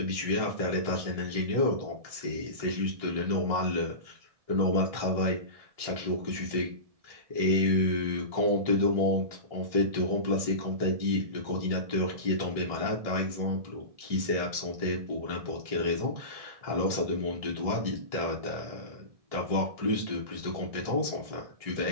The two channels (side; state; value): left; late; 1.7 ms